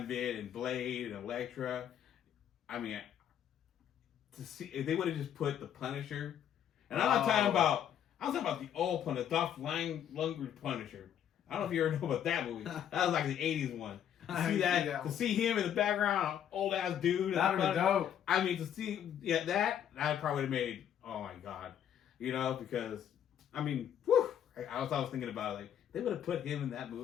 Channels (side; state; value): right; quieter; 9.6 dB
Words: and Blade and Elektra, I mean, to see if they would have just put the Punisher, and I'm not talking about the old Punisher, Dolph Lundgren Punisher. I don't know if you ever know about that movie. That was like the '80s one. To see him in the background, old ass dude. That would be dope. I mean, to see that probably would have made. Oh my god, because I mean, whew, I was thinking about it, like they would have put him in that